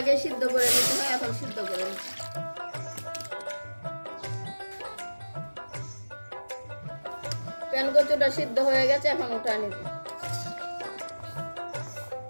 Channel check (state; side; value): inverted; both; correlation -1.00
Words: সিদ্ধ করে নিতে হয়, এখন সিদ্ধ করে নিতে। কচুটা সিদ্ধ হয়ে গেছে, এখন উঠা নিব।